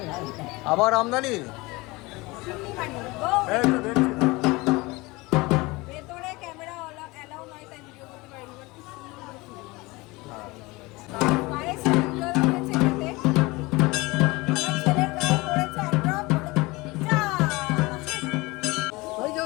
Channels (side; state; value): right; quieter; 22.9 dB